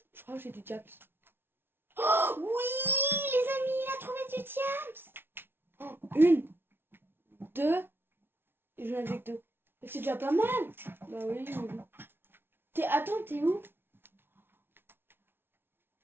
Je crois que j'ai du diaps. Oh oui, les amis, il a trouvé du diams. Une, deux, et j'en avais que deux. C'est déjà pas mal. Bah oui, mais bon. Attends, t'es où?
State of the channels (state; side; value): late; left; 0.11 ms